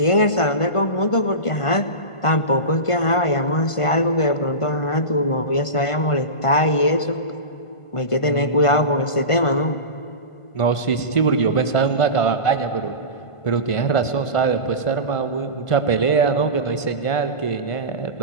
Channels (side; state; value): right; late; 1.5 ms